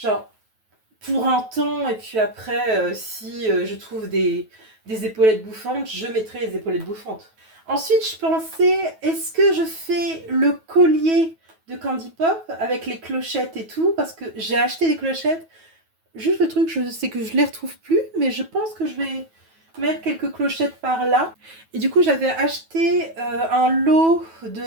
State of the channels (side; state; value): left; late; 9.2 ms